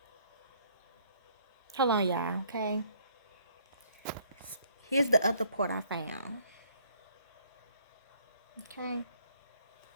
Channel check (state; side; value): inverted; both; correlation -0.63